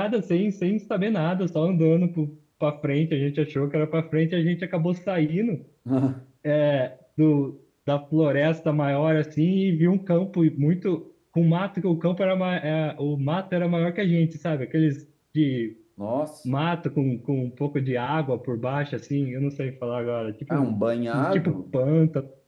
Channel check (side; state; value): both; identical; correlation 1.00